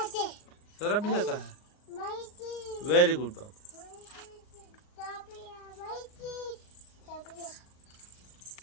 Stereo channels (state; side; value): late; right; 38 ms